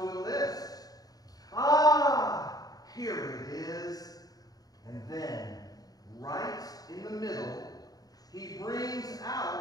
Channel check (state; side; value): late; right; 0.18 ms